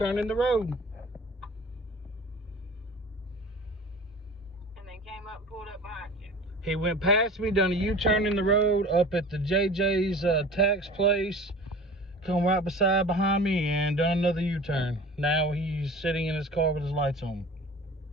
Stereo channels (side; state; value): both; normal; correlation 0.40